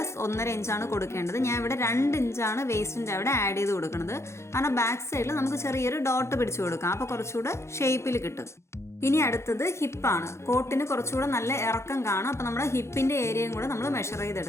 1.5 ഇഞ്ചാണ് കൊടുക്കേണ്ടത്. ഞാൻ ഇവിടെ 2 ഇഞ്ചാണ് വേസ്റ്റിൻ്റെ അവിടെ ആഡ് ചെയ്ത് കൊടുക്കുന്നത്. കാരണം ബാക്ക് സൈഡിൽ നമുക്ക് ചെറിയൊരു ഡോട്ട് പിടിച്ചു കൊടുക്കാം, അപ്പോൾ കുറച്ചുകൂടെ ഷേപ്പിൽ കിട്ടും. ഇനി അടുത്തത് ഹിപ്പാണ്. കോട്ടിന് കുറച്ചുകൂടെ നല്ല ഇറക്കം കാണും, അപ്പോൾ നമ്മുടെ ഹിപ്പിൻ്റെ ഏരിയയും കൂടെ നമ്മൾ മെഷർ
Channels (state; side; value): late; right; 0.13 ms